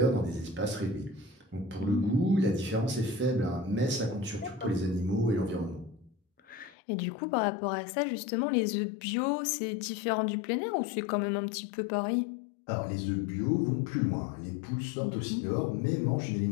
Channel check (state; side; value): drops out; right; at 6.8 s